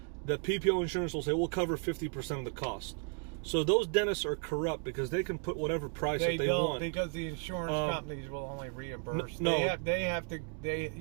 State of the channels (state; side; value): quieter; left; 38.2 dB